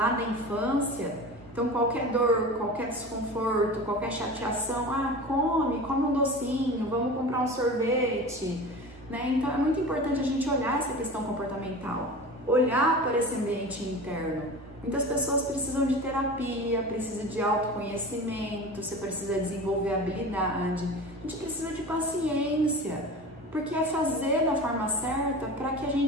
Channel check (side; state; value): both; normal; correlation 0.33